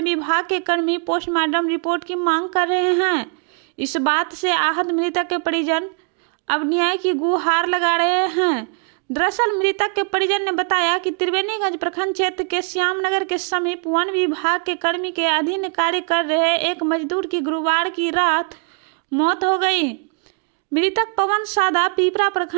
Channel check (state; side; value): quieter; left; 39.5 dB